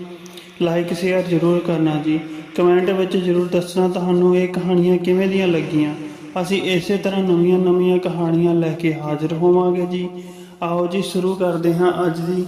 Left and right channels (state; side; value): identical; both; correlation 1.00